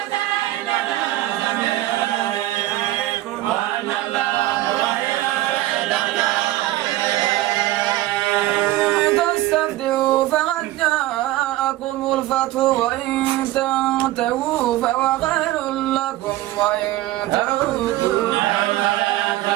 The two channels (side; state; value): left; quieter; 16.2 dB